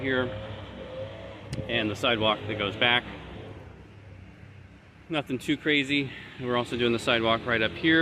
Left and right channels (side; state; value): both; identical; correlation 1.00